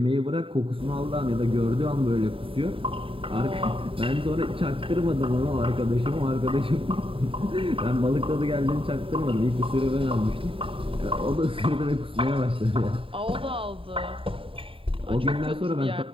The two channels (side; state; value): left; late; 0.26 ms